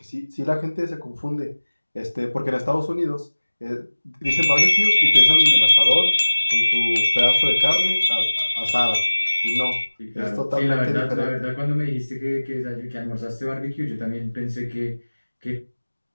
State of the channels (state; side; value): inverted; both; correlation -1.00